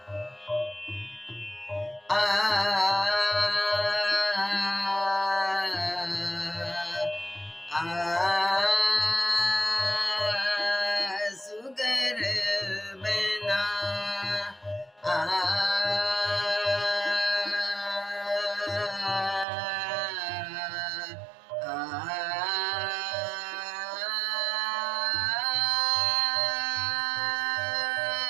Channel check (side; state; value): left; drops out; at 19.5 s